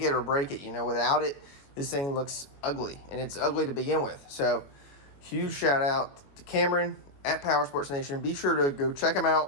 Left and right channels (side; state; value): right; late; 21 ms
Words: it or break it. Without it, this thing looks ugly, and it's ugly to begin with. So huge shout out to Cameron at Power Sports Nation. Be sure to go check them